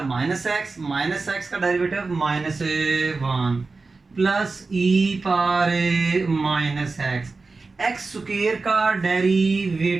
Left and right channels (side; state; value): left; quieter; 3.9 dB